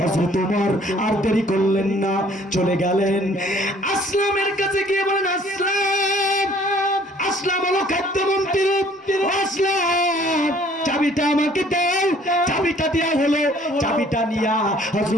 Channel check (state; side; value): normal; both; correlation 0.58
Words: হযরত ওমর আর দেরি করলেন না, চলে গেলেন আসলামের কাছে গিয়ে বলেন, আসলাম, আসলাম হলো খাদ্যমন্ত্রী, আসলাম, চাবিটা আমাকে দাও। চাবিটা দেয়া হলো, চাবিটা নিয়া